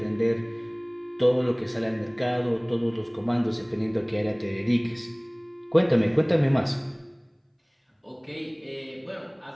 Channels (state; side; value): identical; both; correlation 1.00